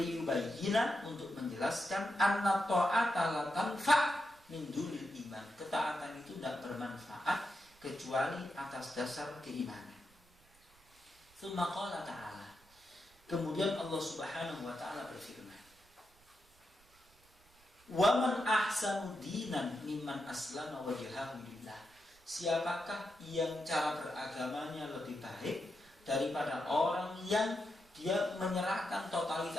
untuk menjelaskan anna ta'ata la tanfa min dunil iman, ketaatan itu tidak bermanfaat kecuali atas dasar keimanan. Tsumma qala ta'ala, kemudian Allah Subhanahu wa taala berfirman, wa man ahsanu dinan mimman aslama wajhahu lillah, siapakah yang cara beragamanya lebih baik daripada orang yang dia menyerahkan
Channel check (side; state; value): right; noise; rumble, 29 dB below the sound